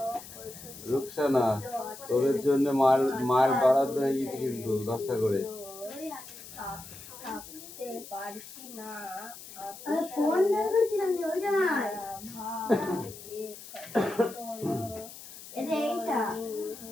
রুকসানা, তোদের জন্য মার বরাদ্দ হয়ে গেছে কিন্তু 10টা করে। পারছি না ফোন বের করছিলাম যে ওইটা নাই এইটা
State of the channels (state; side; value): noise; left; hiss, 15 dB below the sound